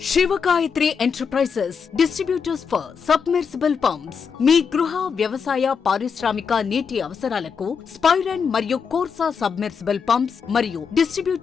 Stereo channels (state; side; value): quieter; right; 6.2 dB